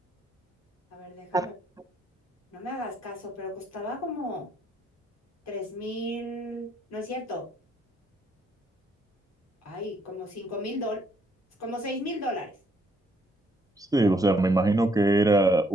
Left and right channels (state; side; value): normal; both; correlation 0.69